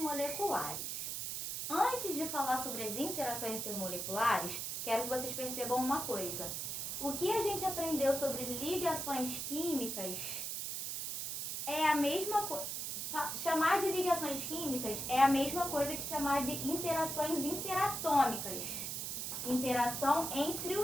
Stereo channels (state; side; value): noise; right; hiss, 3 dB below the sound